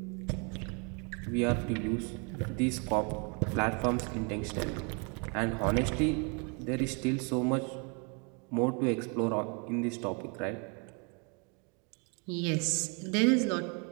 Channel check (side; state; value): left; quieter; 34.8 dB